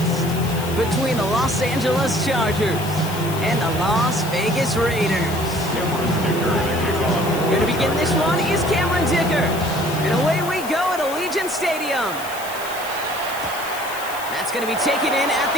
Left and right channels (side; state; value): left; noise; hiss, 12 dB below the sound